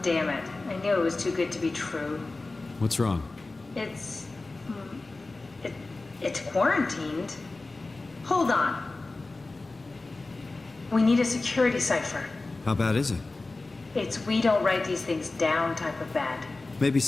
damn it. I knew it was too good to be true. What's wrong? It's quarantined. Hold on. We need a security cipher. How bad is it? It's we don't write these things down type of bad. Maybe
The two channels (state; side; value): quieter; right; 3.3 dB